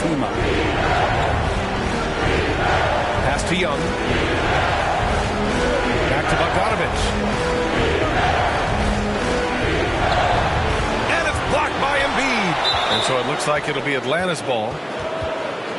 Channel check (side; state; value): both; identical; correlation 1.00